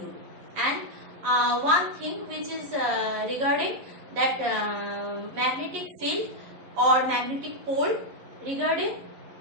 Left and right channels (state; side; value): late; left; 11 ms